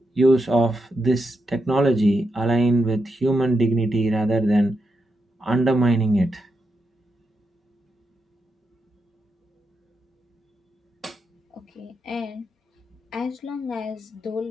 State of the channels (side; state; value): both; normal; correlation 0.85